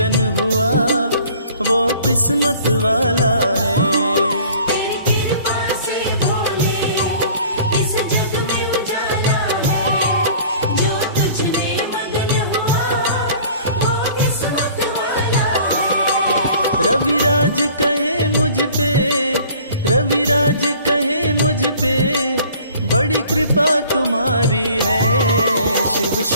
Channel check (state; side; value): inverted; both; correlation -0.50